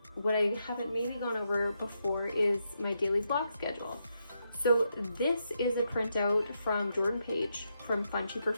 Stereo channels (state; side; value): inverted; both; correlation -0.82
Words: what I haven't maybe gone over before is my daily block schedule. So this is a printout from Jordan Page from